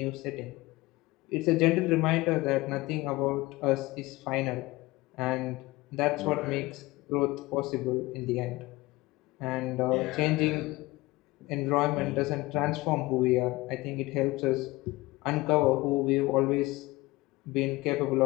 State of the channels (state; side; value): quieter; right; 20.7 dB